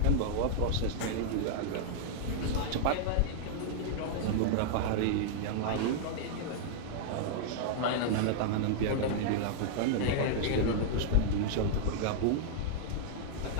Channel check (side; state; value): both; different; correlation -0.01